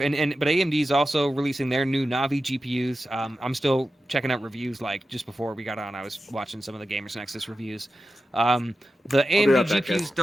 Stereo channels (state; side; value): normal; both; correlation 0.92